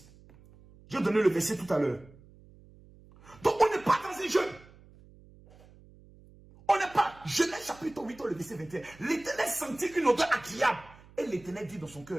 J'ai donné le verset tout à l'heure. Donc on n'est pas dans un jeu. On n'est pas. Genèse chapitre 8, le verset 21. L'Éternel sentit une odeur agréable. Et l'Éternel dit dans son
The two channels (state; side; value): noise; right; hum, 24 dB below the sound